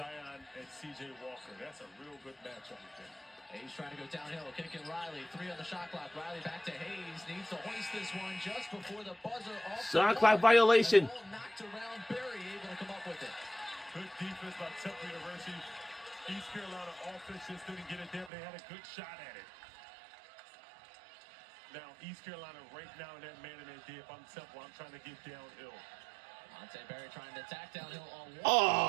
and C.J. Walker. That's a real good matchup with them. Hayes trying to go downhill, kicking Riley. 3 on the shot clock. Riley back to Hayes. Needs to hoist this one just before the buzzer. Shot clock violation. Knocked around. Barry able to come up with it. Good defense by Temple University. East Carolina offense just didn't get it there, but they had a good shot at it. Now, East Carolina right now in that man in their D. If I'm Temple, I'm trying to get downhill. Monte Barry trying to attack downhill on one.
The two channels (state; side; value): drops out; left; at 18.3 s